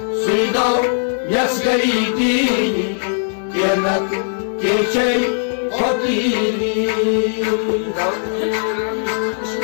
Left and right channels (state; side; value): silent; right; 67 dB below the other